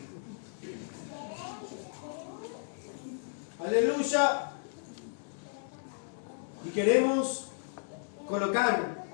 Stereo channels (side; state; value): right; silent; 55 dB below the other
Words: Aleluya. Y queremos colocar